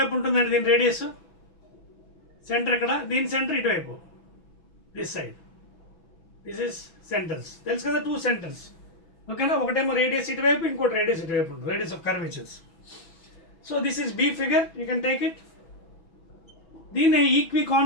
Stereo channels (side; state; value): right; late; 6.1 ms